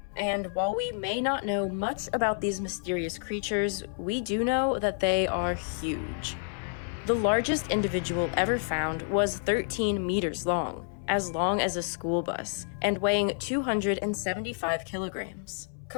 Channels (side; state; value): right; silent; 57 dB below the other